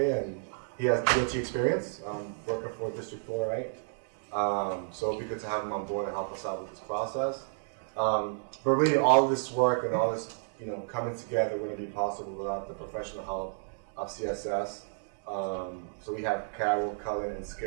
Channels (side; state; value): left; silent; digital silence